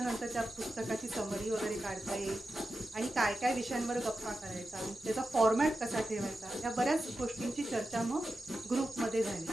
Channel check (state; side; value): normal; both; correlation 0.91